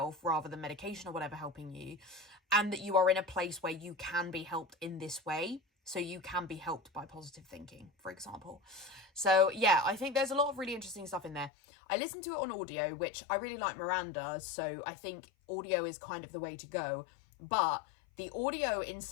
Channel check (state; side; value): drops out; right; at 11.5 s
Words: rather than medication or whatever helping you, and that you are in a place where you can be helped in this way. So you can be helped by positive thinking, for example. So yeah, I think there's a lot of really interesting stuff in there. I listened to it on audio, which I really like Miranda, so I think audio is kind of the way to go. But the audio in